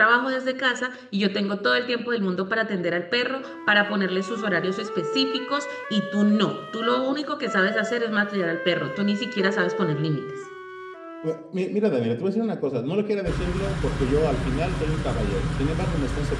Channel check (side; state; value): both; identical; correlation 1.00